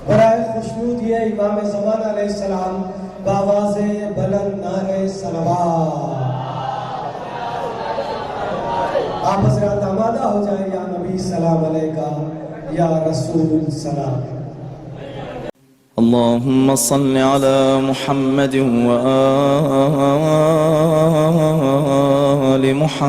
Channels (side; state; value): both; identical; correlation 1.00